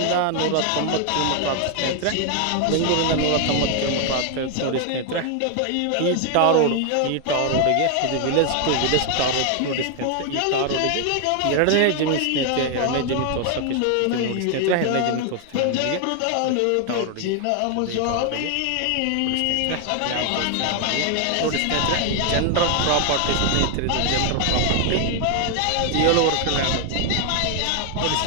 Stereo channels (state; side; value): different; both; correlation 0.00